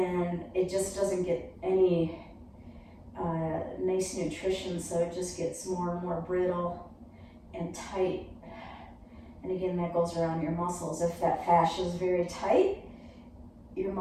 it just doesn't get any nice nutrition, so it just gets more and more brittle and tight. And again, that goes around your muscles. If that fascia is very tight, your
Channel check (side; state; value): both; identical; correlation 1.00